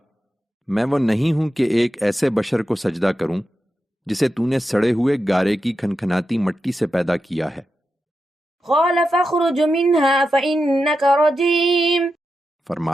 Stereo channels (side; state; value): both; normal; correlation 0.89